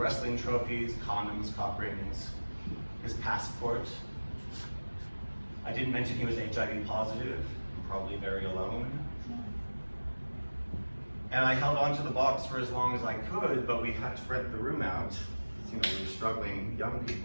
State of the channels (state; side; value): inverted; both; correlation -1.00